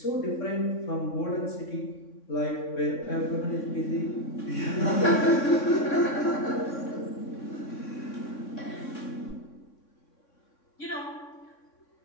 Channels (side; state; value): right; late; 3.6 ms